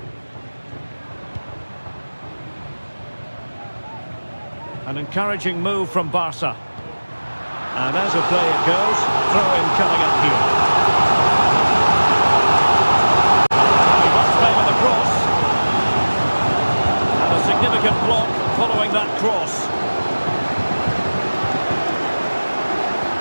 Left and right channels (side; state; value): both; inverted; correlation -1.00